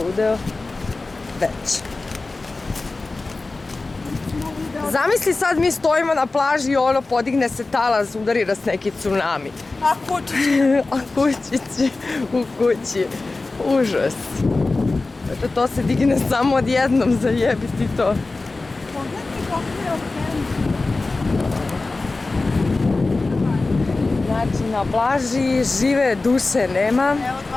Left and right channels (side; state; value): right; quieter; 3.4 dB